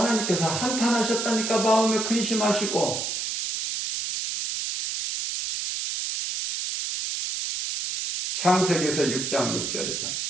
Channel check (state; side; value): noise; right; hiss, 3 dB below the sound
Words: 한탄하셨다니까. 마음에 근심하시고, 창세기에서 6장 6절에서